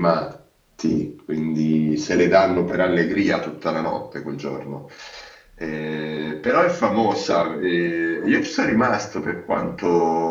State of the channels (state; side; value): identical; both; correlation 1.00